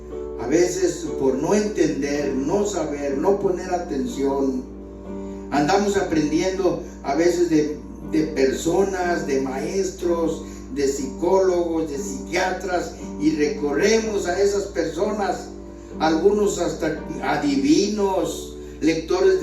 A veces por no entender, no saber, no poner atención, andamos aprendiendo a veces de personas, de maestros, de psicólogos, de psiquiatras, y recorremos a esas personas, algunos hasta adivinos, lectores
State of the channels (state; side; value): identical; both; correlation 1.00